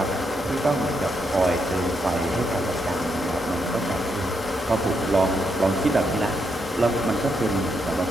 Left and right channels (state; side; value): normal; both; correlation 0.80